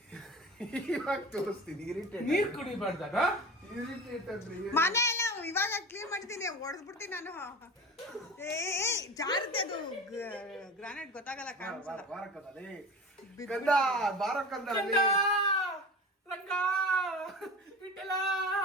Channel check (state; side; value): normal; both; correlation 0.33